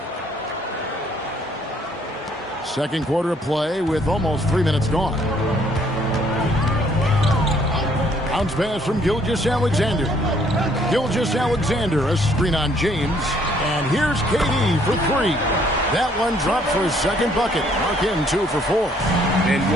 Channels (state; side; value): normal; both; correlation 0.64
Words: Second quarter of play with almost 3 minutes gone. Bounce pass from Gilgeous-Alexander. Gilgeous-Alexander, a screen on James. And here's KD for 3. That one dropped for his second bucket. Mark him 2 for 4. And